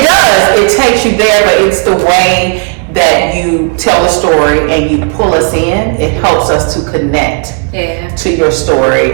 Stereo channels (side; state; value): left; quieter; 38.4 dB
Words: does. It takes you there, but it's the way that you tell the story and you pull us in. It helps us to connect Yeah. to your story.